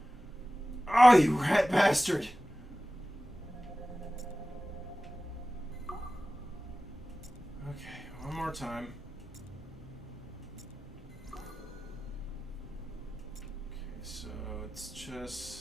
Oh, you rat bastard! Okay, one more time. Okay, so it's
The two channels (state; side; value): normal; both; correlation 0.96